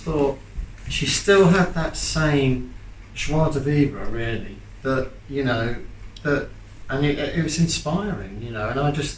thought she still had that same joie de vivre, really, that, you know, that, and it was inspiring, you know, and I just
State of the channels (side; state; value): both; identical; correlation 1.00